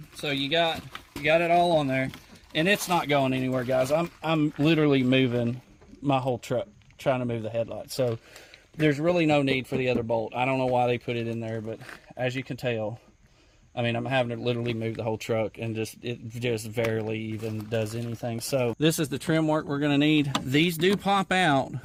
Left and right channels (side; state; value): both; identical; correlation 1.00